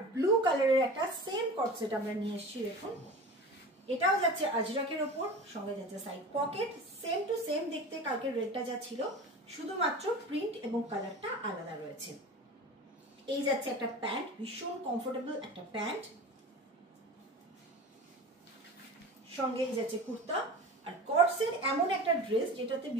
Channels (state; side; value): normal; both; correlation 0.34